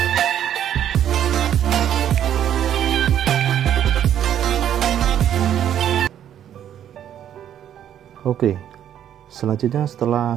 Oke, selanjutnya setelah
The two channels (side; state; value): left; quieter; 10.3 dB